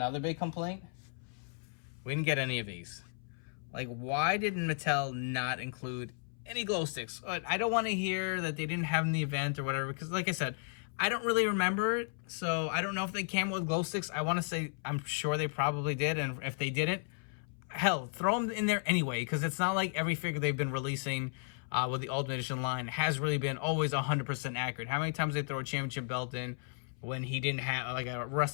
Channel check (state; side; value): silent; right; 55 dB below the other